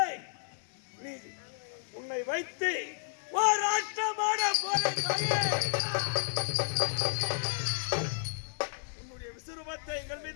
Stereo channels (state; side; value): silent; right; 56 dB below the other